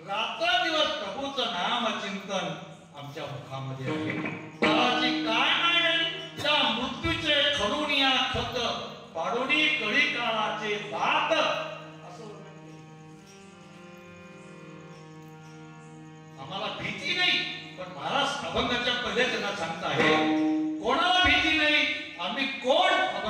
रात्रदिवस प्रभूचं नामचिंतन आमच्या मुखामध्ये आहे. काळाची काय नाही त्या मृत्यूचे खडून या खत पाडोनी कळी काळाचे दात असं. आम्हाला भीती नाही, पण महाराज अभंगाच्या पहिल्या जगात सांगता आहे कोणाला भीती नाही. आम्ही कोण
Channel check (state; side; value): identical; both; correlation 1.00